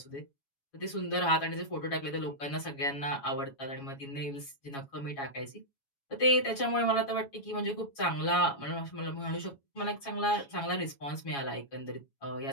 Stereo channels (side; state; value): right; late; 7.2 ms